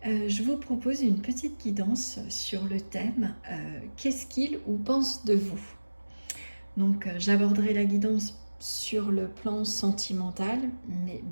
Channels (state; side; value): inverted; both; correlation -1.00